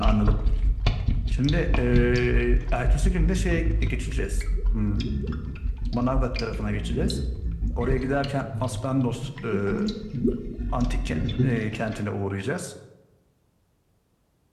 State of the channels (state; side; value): identical; both; correlation 1.00